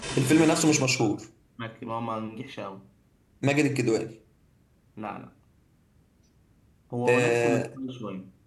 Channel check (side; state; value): both; identical; correlation 1.00